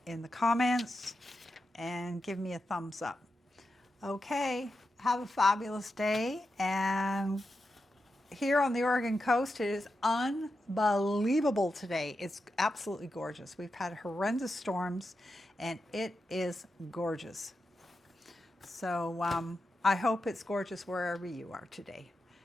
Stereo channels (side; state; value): both; normal; correlation 0.89